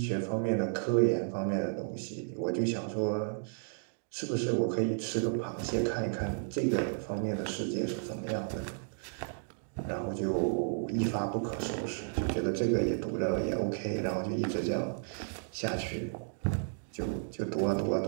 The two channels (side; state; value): left; silent; digital silence